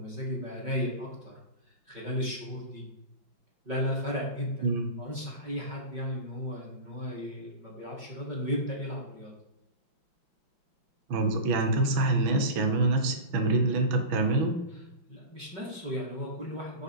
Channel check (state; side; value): late; left; 5.3 ms